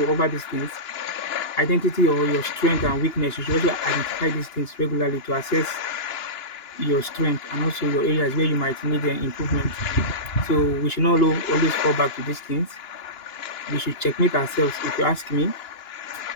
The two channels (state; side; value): late; right; 2.8 ms